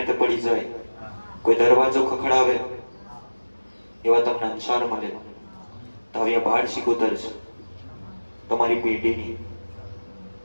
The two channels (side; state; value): both; inverted; correlation -1.00